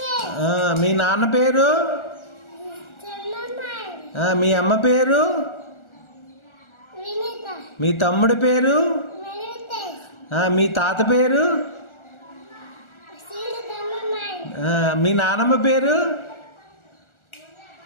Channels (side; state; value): right; late; 1.4 ms